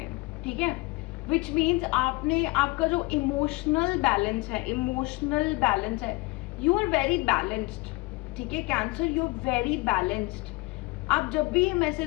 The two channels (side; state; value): right; quieter; 23.3 dB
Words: हैं, ठीक है। विच मीन्स आपने, आपका जो इमोशनल बैलेंस है, यू आर वेरी बैलेंस्ड, ठीक है। Cancer, you are very balanced. आप जब भी ये